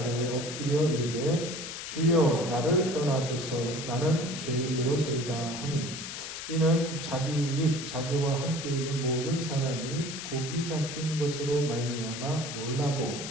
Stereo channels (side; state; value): left; noise; hiss, 8 dB below the sound